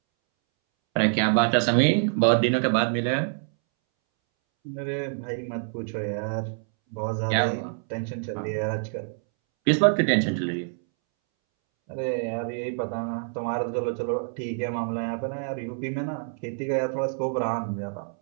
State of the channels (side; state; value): left; silent; 61 dB below the other